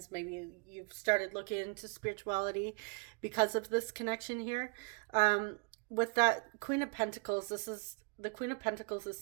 Maybe you've started looking into spirituality because of this connection here. With that Queen of Pentacles, this is the Queen of Pentacles is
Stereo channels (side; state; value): left; quieter; 32.2 dB